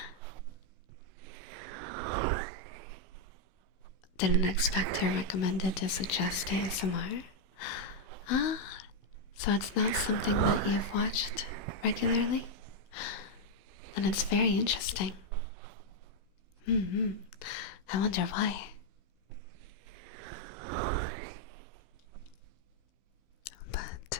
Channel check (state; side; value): late; right; 15 ms